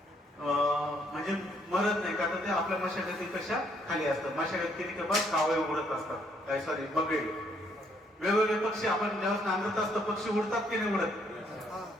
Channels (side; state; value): both; normal; correlation 0.69